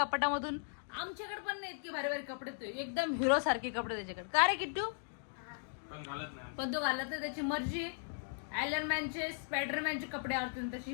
कपाटामधून, आमच्याकडे पण नाही इतकी भारी भारी कपडे. तो एकदम हिरो सारखे कपडे त्याच्याकडे. का रे किट्टू? पण तो घालत नाही. त्याची मर्जी. आयरनमॅनचे स्पायडरमॅनचे कपडे आवडतील तशी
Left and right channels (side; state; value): right; silent; digital silence